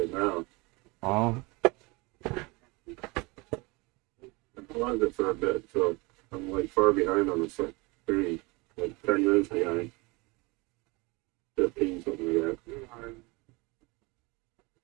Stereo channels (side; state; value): left; quieter; 25.9 dB